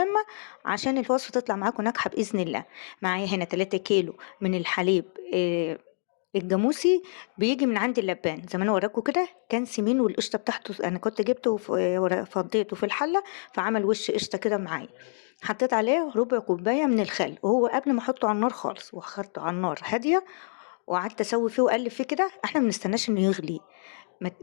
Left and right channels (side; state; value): right; silent; digital silence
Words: عشان الوصفه تطلع معاكم ناجحه باذن الله. معايا هنا 3 كيلو من الحليب الجاموسي، بيجي من عند اللبان زي ما انا وراكم كده، كان سمين والقشطه بتاعته انا كنت جبته فضيته في الحله، فعمل وش قشطه كده معايا. حطيت عليه ربع كوبايه من الخل، وهو قبل ما احطه على النار خالص واخدته على النار هاديه، وقعدت اسوي فيه واقلب فيه كده. احنا ما بنستناش انه يغلي،